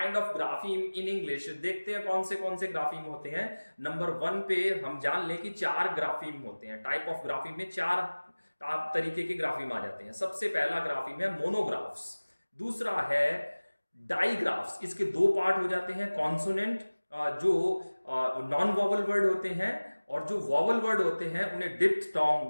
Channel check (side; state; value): both; inverted; correlation -1.00